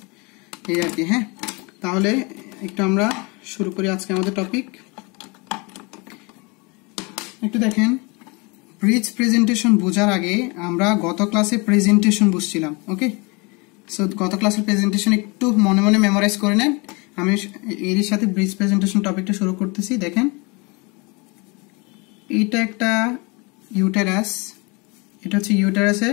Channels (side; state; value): right; quieter; 28.6 dB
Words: এই আর কি। হ্যাঁ, তাহলে একটু আমরা শুরু করি আজকে আমাদের টপিক। একটু দেখেন, ব্রিজ প্রেজেন্টেশন বোঝার আগে আমরা গত ক্লাসে প্রেজেন্টেশন বুঝছিলাম। ওকে, সো গত ক্লাসের প্রেজেন্টেশন একটু মনে মনে মেমোরাইজ করে নেন। আমি এরই সাথে ব্রিজ প্রেজেন্টেশন টপিকটা শুরু করতেছি। দেখেন, এটা একটা ইউটেরাস, এটা হচ্ছে ইউটেরাসের